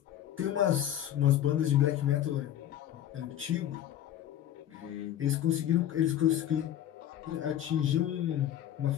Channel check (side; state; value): right; quieter; 11.4 dB